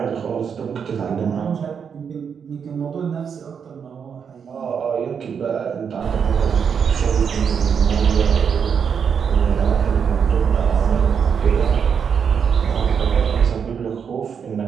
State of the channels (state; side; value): quieter; left; 7.0 dB